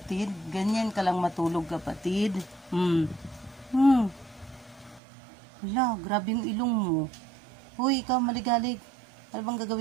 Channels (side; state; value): left; drops out; at 5.0 s